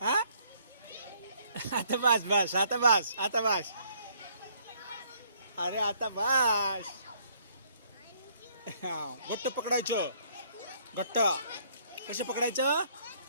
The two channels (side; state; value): both; inverted; correlation -0.65